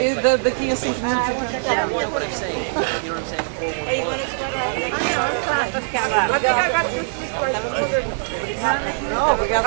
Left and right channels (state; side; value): silent; left; digital silence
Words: Daqui a 5 minutos. Não,